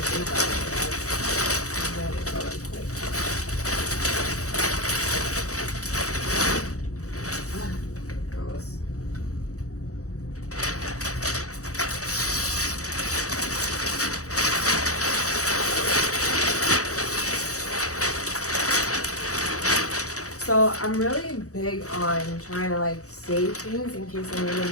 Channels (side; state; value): right; late; 0.65 ms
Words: about it. I'm ready to go really quick. So I'm really big on trying to like save things in case I need